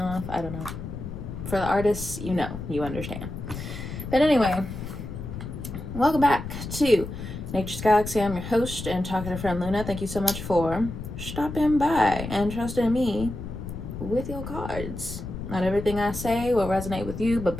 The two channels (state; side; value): noise; left; rumble, 8 dB below the sound